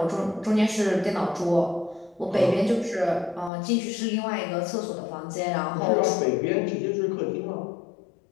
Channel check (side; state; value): right; drops out; at 3.5 s